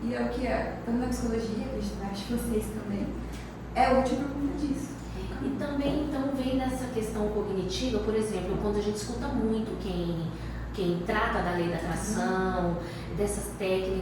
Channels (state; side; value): identical; both; correlation 1.00